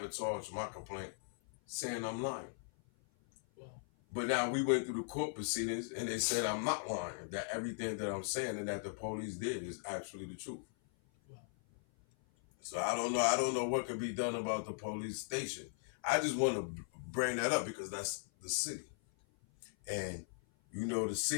my complaint saying I'm lying. Wow. But now we went through the court proceedings and they said I'm not lying, that everything that I'm saying and that the police did is actually the truth. Wow. So I don't know what could be done about the police station. I just want to bring that up because that's the city. And the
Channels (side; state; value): right; silent; 52 dB below the other